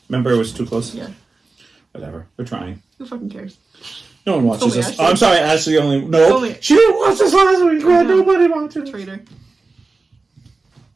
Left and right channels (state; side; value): quieter; left; 3.7 dB